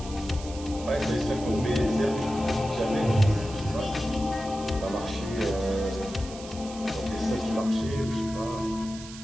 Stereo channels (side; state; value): right; noise; hiss, 15 dB below the sound